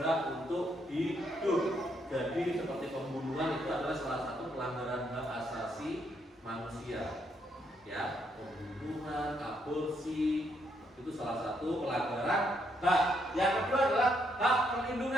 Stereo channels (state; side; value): normal; both; correlation 0.75